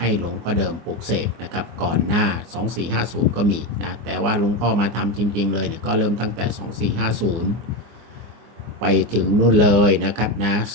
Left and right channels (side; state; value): left; late; 24 ms